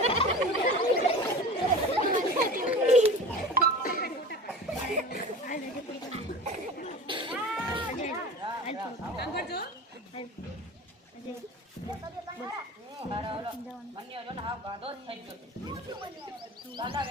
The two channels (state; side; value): normal; both; correlation 0.35